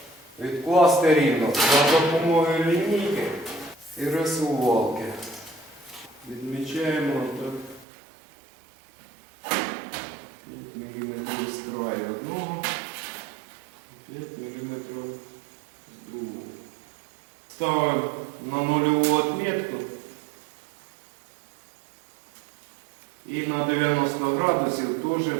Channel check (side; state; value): left; drops out; at 7.9 s